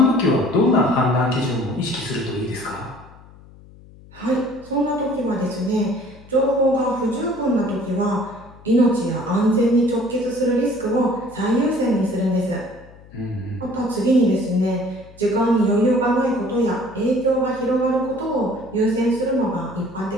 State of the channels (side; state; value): left; noise; hum, 22 dB below the sound